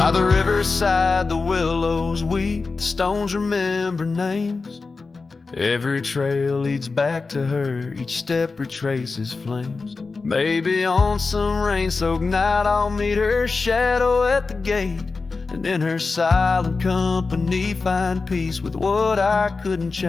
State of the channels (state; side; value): quieter; right; 4.1 dB